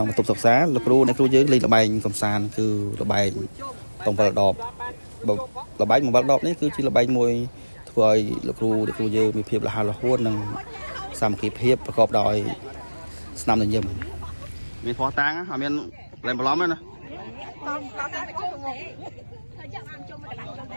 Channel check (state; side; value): inverted; both; correlation -1.00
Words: ុងបន្ទប់សិក្សាលោកគ្រូអ្នកគ្រូយើងលេងល្បែងកំសាន្តគឺល្បែងតងវល់ដបល្បែងវល់ដបនេះគឺជាល្បែងមួយធ្វើឲ្យលោកគ្រូអ្នកគ្រូយើងមានភាពរហ័សរហួននិងសាមគ្គីភាពប្រកបដោយស្នាមញញឹមមានផោះតាំងអត់មានលែងបន្លំទេណា